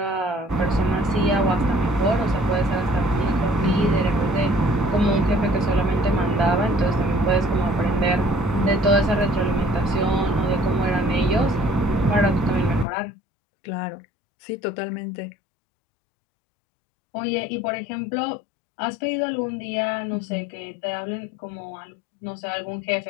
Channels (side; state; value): right; drops out; at 12.9 s